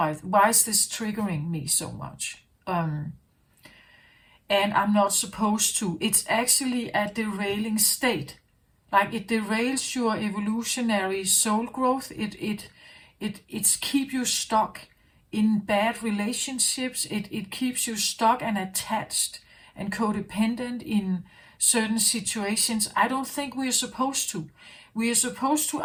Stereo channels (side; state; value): both; identical; correlation 1.00